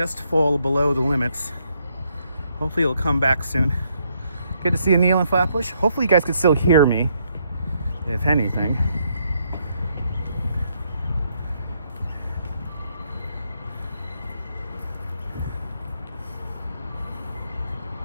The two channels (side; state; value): both; inverted; correlation -0.74